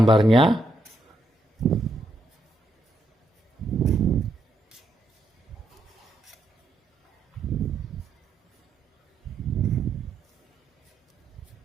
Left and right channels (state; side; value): normal; both; correlation 0.79